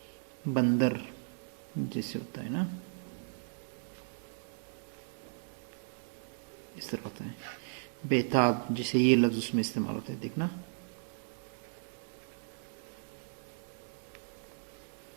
बंदर जैसे होता है ना, इस तरह होता है। बेताब जिसे ये लफ्ज उसमें इस्तेमाल होता है, देखना।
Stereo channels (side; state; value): left; silent; digital silence